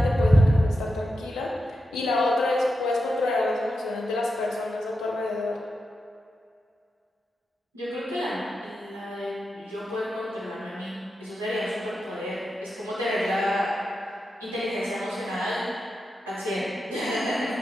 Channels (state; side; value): normal; both; correlation 0.88